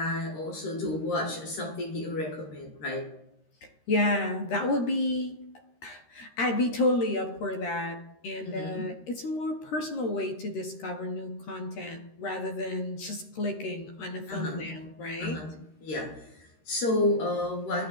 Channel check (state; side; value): late; right; 13 ms